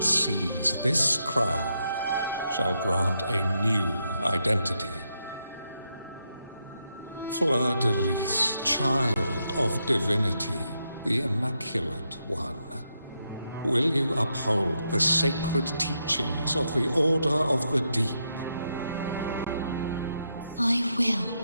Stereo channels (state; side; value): inverted; both; correlation -0.82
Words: seas, this crown shall grant a new identity. Fleur-de-Lis, child of divinity, the Immaculate One, will you uphold the sacred teachings of the Order of the Deep? I will.